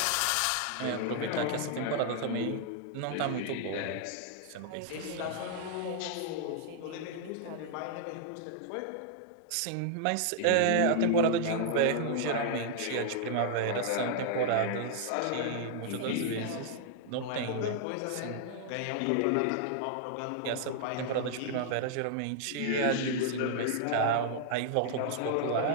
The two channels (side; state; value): both; different; correlation -0.01